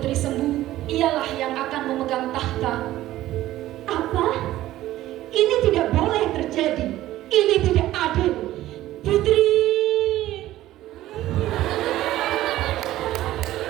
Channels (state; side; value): quieter; left; 14.9 dB